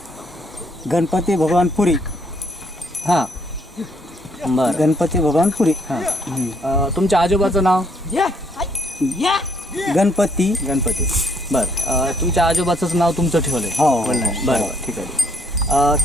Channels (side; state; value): both; normal; correlation 0.68